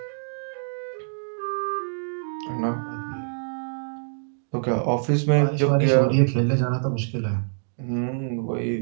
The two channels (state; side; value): silent; left; digital silence